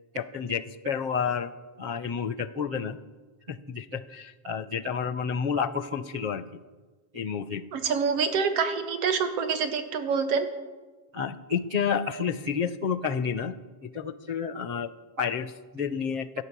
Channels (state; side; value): late; left; 7.5 ms